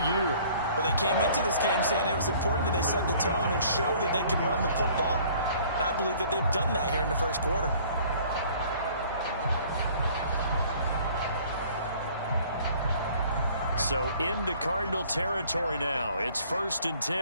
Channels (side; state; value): both; inverted; correlation -0.54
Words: year. Well, they came into this game saying it was important that they set the tone and show that they can run the football. And I believe that they've done that here in the first quarter. So into Cardinal territory now. It's 1st and